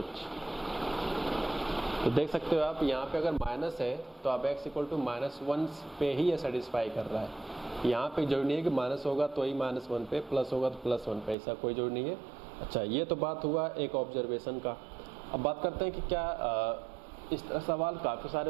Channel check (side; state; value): left; drops out; at 11.4 s